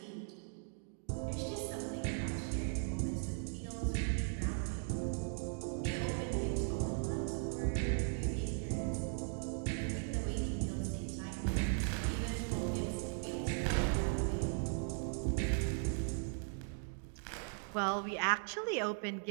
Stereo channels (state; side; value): silent; left; 52 dB below the other